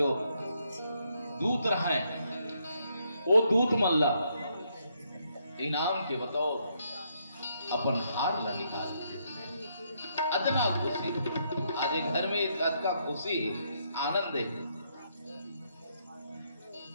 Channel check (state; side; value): inverted; both; correlation -0.75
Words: दूत रहे, वो दूत मल्ला इनाम के बतौर अपन हार ला निकाल दे। अदना खुशी आज घर में का खुशी आनंद है।